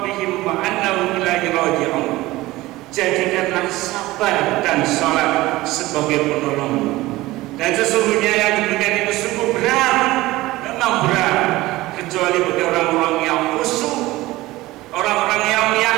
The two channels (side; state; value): left; quieter; 18.4 dB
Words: wa annahum ilaihi raji'un." Jadikanlah sabar dan salat sebagai penolong. Dan sesungguhnya yang demikian itu sungguh berat, memang berat, kecuali bagi orang-orang yang khusyuk, orang-orang yang